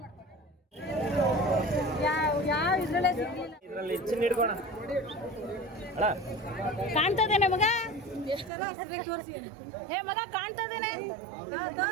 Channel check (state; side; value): drops out; left; at 8.5 s